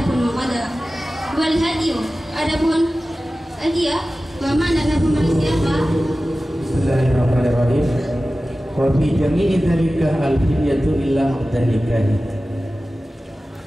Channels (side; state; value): both; normal; correlation 0.95